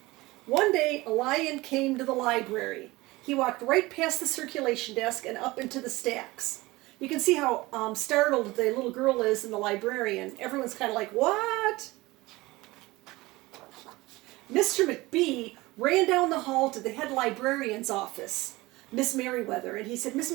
One day, a lion came to the library. He walked right past the circulation desk and up into the stacks. You can see how startled the little girl is and the librarian. Everyone's kind of like, what? Mr. McBee ran down the hall to the head librarian's office, Miss Merriweather, and he said, Miss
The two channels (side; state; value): left; quieter; 20.6 dB